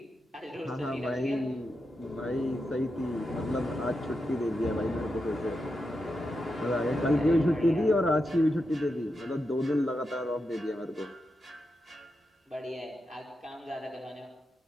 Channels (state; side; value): normal; both; correlation 0.87